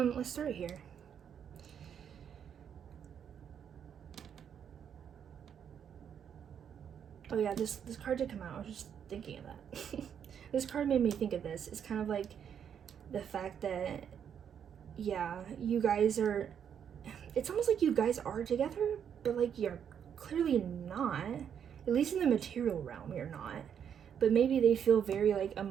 Let's start here. Oh yeah, this card did come out. I was just thinking of that. This card made me think of this. It's kind of like the fact that, yeah, you guys are, it's almost like you guys are together, but like you're clearly not. At least in the material realm, you're not. But maybe they feel very like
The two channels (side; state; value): left; quieter; 8.3 dB